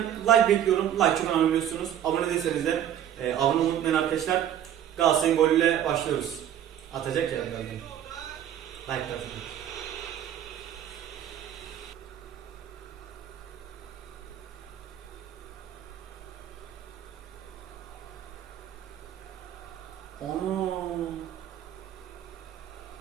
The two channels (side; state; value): left; quieter; 10.5 dB